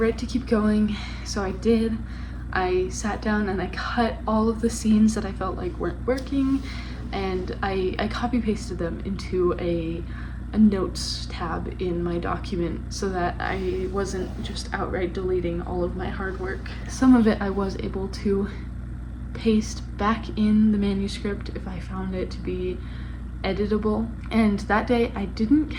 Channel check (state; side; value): identical; both; correlation 1.00